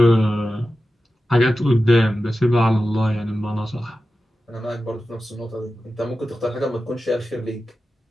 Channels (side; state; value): both; normal; correlation 0.93